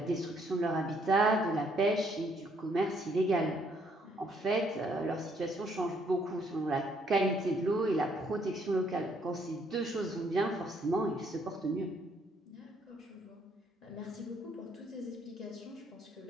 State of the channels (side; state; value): both; normal; correlation 0.68